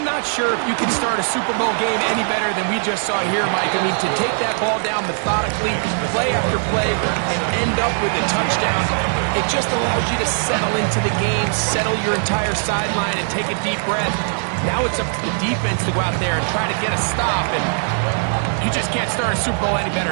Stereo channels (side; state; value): left; silent; digital silence